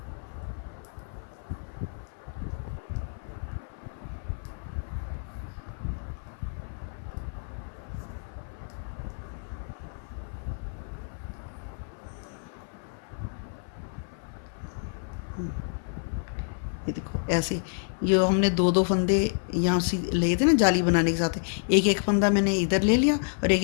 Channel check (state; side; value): silent; right; 56 dB below the other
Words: ये देखो ऐसे, ये हमने दो दो फंदे यहाँ से लिए थे ना जाली बनाने के साथ, एक एक फंदा मैंने इधर ले लिया और एक